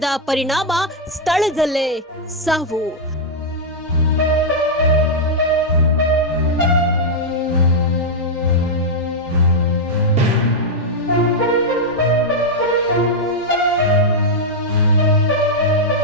ಪರಿಣಾಮ ಸ್ಥಳದಲ್ಲೇ ಸಾವು.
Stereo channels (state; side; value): normal; both; correlation -0.04